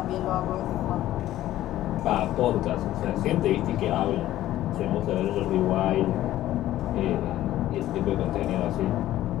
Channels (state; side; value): quieter; right; 14.0 dB